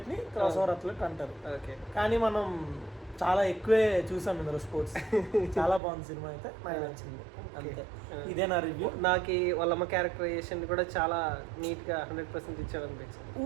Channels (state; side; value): drops out; left; at 5.8 s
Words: ని క్రాస్ ఓవర్ అథ్లెట్ అంటారు. కానీ మనం చాలా ఎక్కువే చూసాం ఇందులో స్పోర్ట్స్. చాలా బాగుంది సినిమా అయితే, నాకు నచ్చింది అంతే. ఇదే నా రివ్యూ. నాకు వాళ్ళమ్మ క్యారెక్టరైజేషన్ కూడా చాలా నీట్ గా 100% ఇచ్చాడు అనిపించింది.